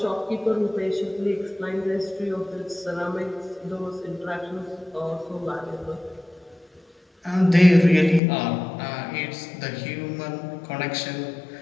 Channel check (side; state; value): right; drops out; at 8.2 s